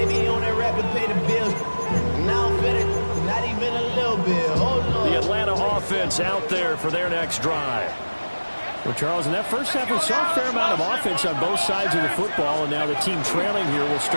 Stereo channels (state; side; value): inverted; both; correlation -1.00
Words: he on that rapid pay the bills. Now fit it, not even a little bit. Oh, no. The Atlanta offense out there for their next drive. Well, Charles, in that first half, we saw a fair amount of offense on both sides of the football, and now the team trailing here will